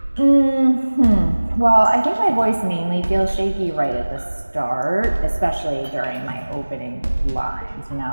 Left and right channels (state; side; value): inverted; both; correlation -1.00